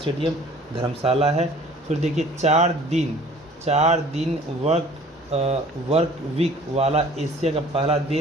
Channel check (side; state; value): both; normal; correlation 0.50